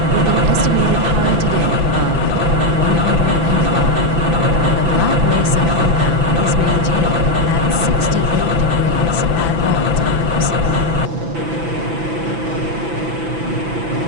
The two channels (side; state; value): left; late; 6.0 ms